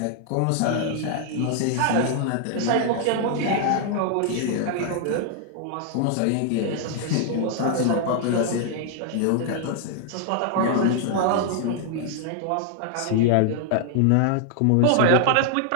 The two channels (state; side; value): different; both; correlation 0.00